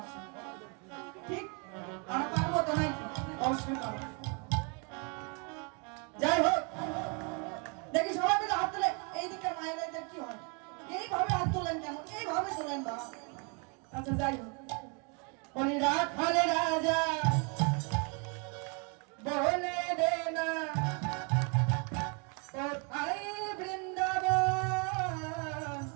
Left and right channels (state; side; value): quieter; left; 35.2 dB